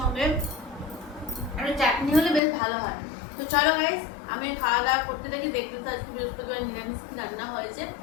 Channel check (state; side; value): drops out; right; at 2.4 s